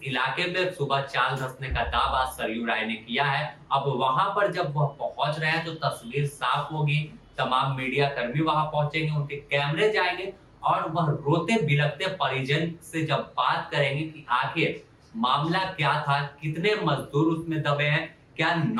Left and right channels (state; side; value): identical; both; correlation 1.00